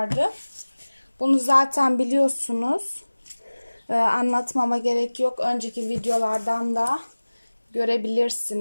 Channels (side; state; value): both; inverted; correlation -1.00